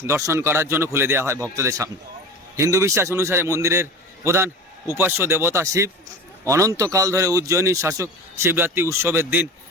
দর্শন করার জন্য খুলে দেওয়া হয় ভক্তদের সামনে। হিন্দু বিশ্বাস অনুসারে মন্দিরের প্রধান উপাস্য দেবতা শিব। অনন্তকাল ধরে উজ্জয়িনীর শাসক শিবরাত্রি উৎসবের দিন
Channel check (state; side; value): normal; both; correlation 0.33